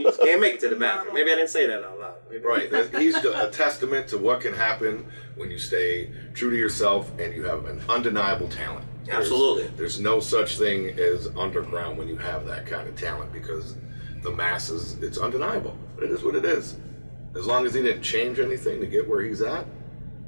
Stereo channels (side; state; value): both; inverted; correlation -1.00